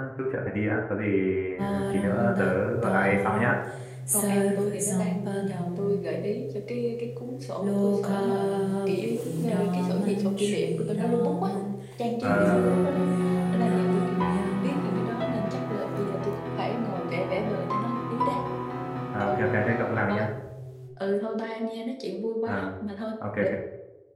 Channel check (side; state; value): both; identical; correlation 1.00